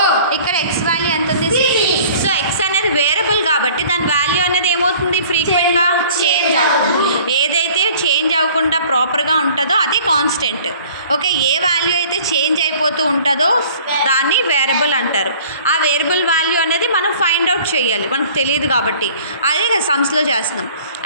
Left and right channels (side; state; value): both; inverted; correlation -0.50